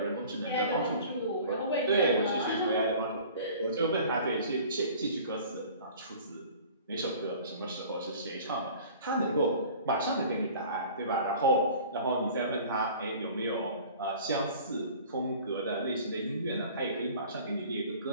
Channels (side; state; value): both; inverted; correlation -0.46